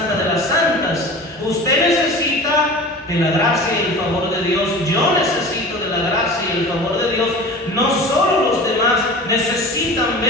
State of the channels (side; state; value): both; normal; correlation 0.37